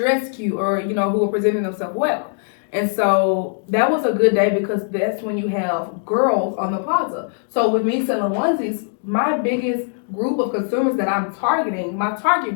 cute or, you know, who are presenting themselves well. And so that was a good day because that's when you have girls on the plaza. So with me selling onesies, my biggest group of consumers that I'm targeting, my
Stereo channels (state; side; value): silent; right; digital silence